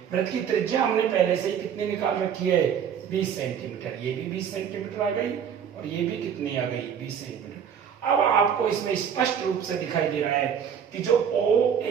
वृत्त की त्रिज्या हमने पहले से ही कितनी निकाल रखी है, 20 सेंटीमीटर। ये भी 20 सेंटीमीटर आ गई और ये भी कितनी आ गई, 20 सेंटीमीटर। अब आपको इसमें स्पष्ट रूप से दिखाई दे रहा है कि जो ओ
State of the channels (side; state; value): left; quieter; 8.0 dB